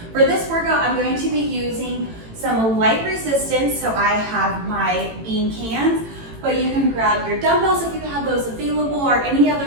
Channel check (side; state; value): left; late; 18 ms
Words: For this workout, I'm going to be using some light resistance, so I have my bean cans, but you can grab your dumbbells if you have those available or any